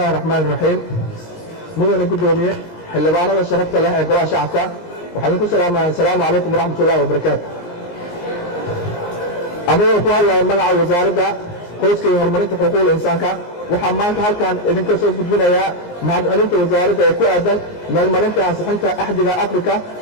الرحمن الرحيم. مدن قدومية xildhibaanada sharafta leh ee golaha shacabka waxaan ku salaamayaa. assalaamu calaykum waraxmat ullahi wabarakaatu. anigoo ku hadlaya magaca wasaaradda qoyska iyo horumarinta xuquuqda insaanka waxaa maanta halkan idinka soo gudbinayaa mahadcelinta wasaaradda ee ku aadan meelmarinta ansixinta axdiga afrika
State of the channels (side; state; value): right; late; 17 ms